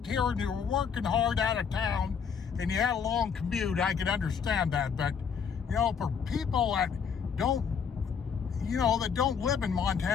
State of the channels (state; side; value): quieter; right; 6.7 dB